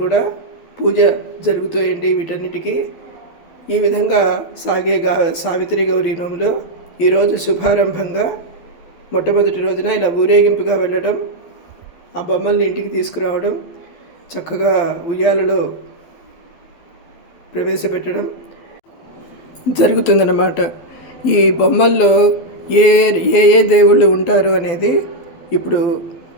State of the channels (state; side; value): late; right; 12 ms